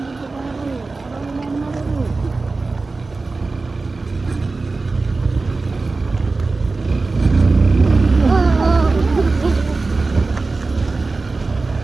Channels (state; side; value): quieter; left; 3.7 dB